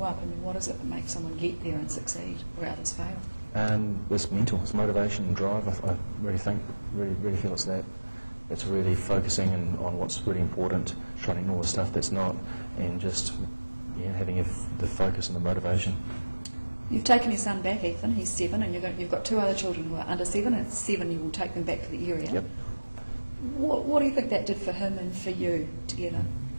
up, what is it that makes someone get there and succeed where others fail? It's mental, it's motivation and drive, I really think, really feel it's that. It's really focusing on what's really important, trying to ignore the stuff that's not, and just having the focus and the motivation. You've taken your son back, Ethan, he's 7, and you've got 2 other children who are under 7, and at 7 you will take them back to the area. Yep. What do you think that did for him and for you together?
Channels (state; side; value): inverted; both; correlation -1.00